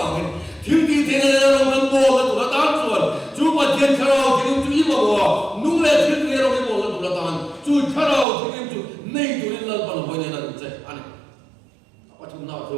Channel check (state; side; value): drops out; left; at 8.2 s